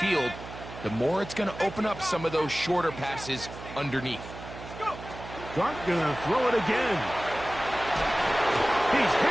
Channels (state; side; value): noise; right; hum, 13 dB below the sound